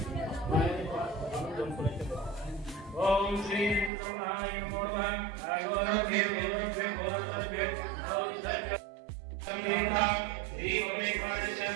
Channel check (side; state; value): left; drops out; at 3.9 s